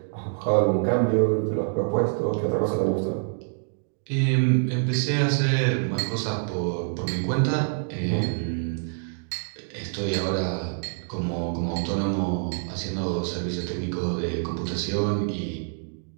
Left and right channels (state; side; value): silent; left; 61 dB below the other